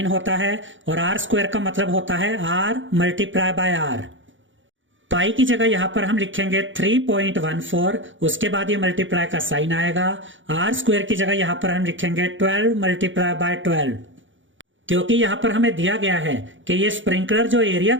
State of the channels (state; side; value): late; left; 0.56 ms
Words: होता है और आर स्क्वायर का मतलब होता है आर मल्टीप्लाई बाय आर। पाई की जगह यहां पर हम लिखेंगे 3.14, उसके बाद ये मल्टीप्लाई का साइन आएगा। आर स्क्वायर की जगह यहां पर हम लिखेंगे 12 मल्टीप्लाई बाय 12, क्योंकि यहां पर हमें दिया गया है कि ये स्प्रिंकलर जो एरिया